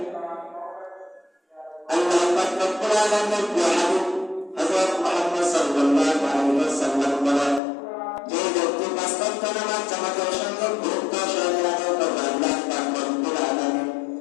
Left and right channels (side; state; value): right; drops out; at 7.6 s